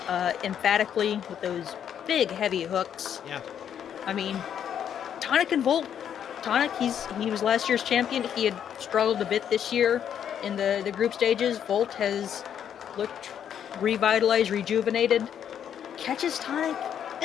emphatically with those big, heavy hooks. Yeah. I mean, Tonic and Volt. Tonic, he was last year's champion. He had struggled a bit this year in the group stages. Volt has looked revitalized, rejuvenated. Catches Tonic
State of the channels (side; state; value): right; quieter; 9.0 dB